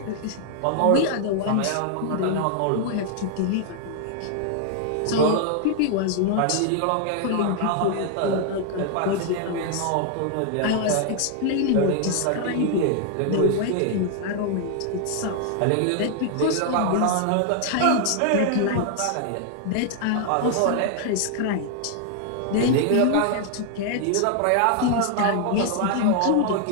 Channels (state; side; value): different; both; correlation 0.00